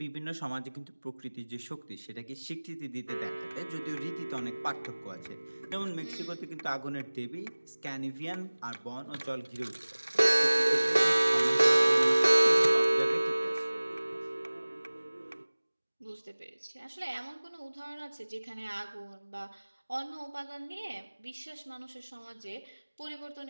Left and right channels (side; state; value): both; inverted; correlation -1.00